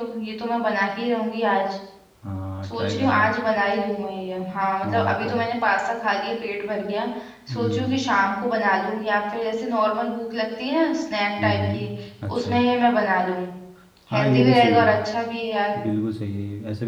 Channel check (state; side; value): identical; both; correlation 1.00